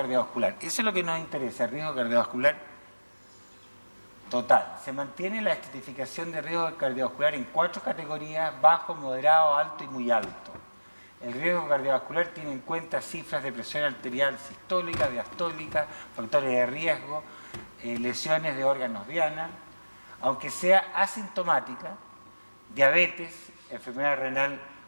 Eso es lo que nos interesa, el riesgo cardiovascular total. Se mantiene la estratificación de riesgo cardiovascular en 4 categorías: bajo, moderado, alto y muy alto. El riesgo cardiovascular tiene en cuenta cifras de presión arterial sistólica, diastólica, factores de riesgo, lesiones de órganos diana, aunque sea asintomática, diabetes, enfermedad renal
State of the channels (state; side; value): inverted; both; correlation -1.00